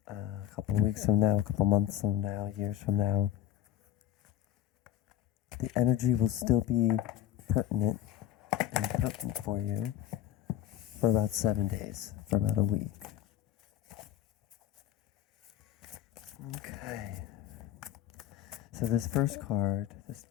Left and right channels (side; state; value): right; quieter; 12.1 dB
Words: a couple weeks from now, a couple months from now, years from now, the energy will still be pertinent and potent for you for about 7 days, for about a week. Okay. So this first card, this